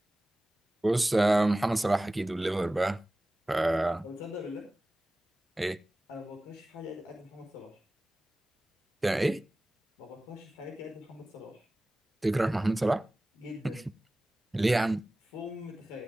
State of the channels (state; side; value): normal; both; correlation 0.97